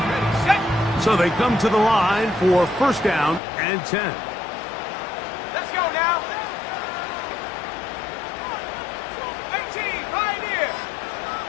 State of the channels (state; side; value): drops out; right; at 3.4 s